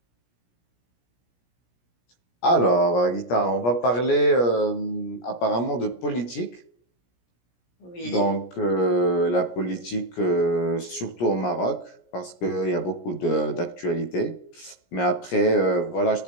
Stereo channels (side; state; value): right; late; 17 ms